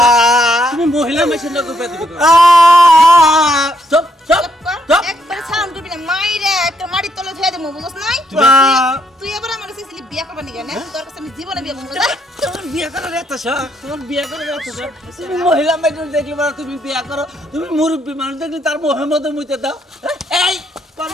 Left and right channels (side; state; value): both; normal; correlation 0.74